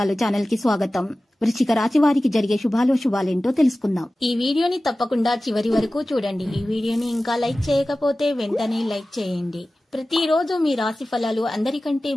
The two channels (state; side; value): normal; both; correlation 0.96